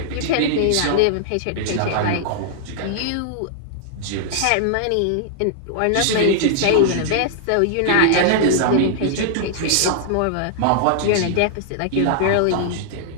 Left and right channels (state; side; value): different; both; correlation -0.01